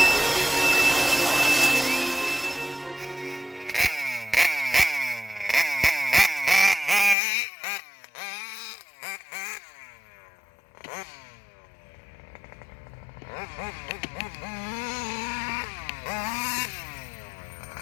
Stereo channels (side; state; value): right; drops out; at 7.2 s